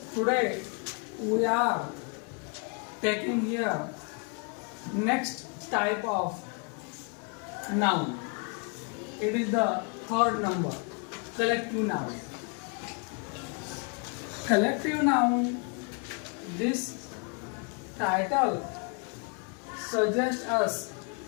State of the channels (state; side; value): quieter; right; 36.3 dB